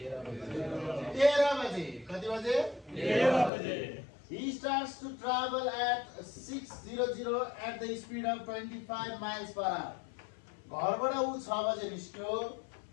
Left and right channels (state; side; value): drops out; right; at 3.5 s